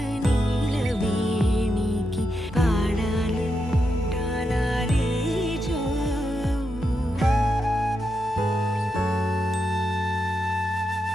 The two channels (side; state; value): both; normal; correlation 0.85